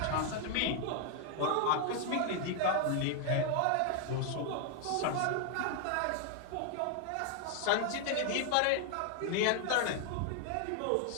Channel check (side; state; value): both; different; correlation 0.00